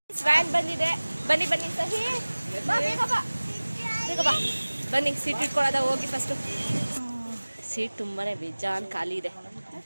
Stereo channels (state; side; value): inverted; both; correlation -1.00